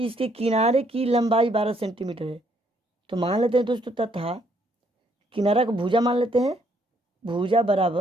इसके किनारे की लंबाई 12 सेंटीमीटर है, तो मान लेते हैं दोस्तों तथा किनारा को भुजा मान लेते हैं, भुजा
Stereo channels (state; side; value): normal; both; correlation 0.69